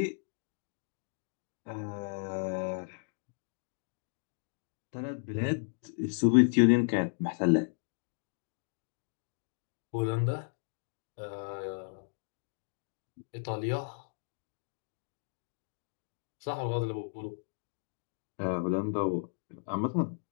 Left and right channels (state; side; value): silent; right; digital silence